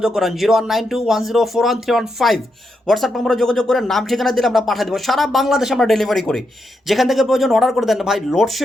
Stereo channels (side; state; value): both; normal; correlation 0.83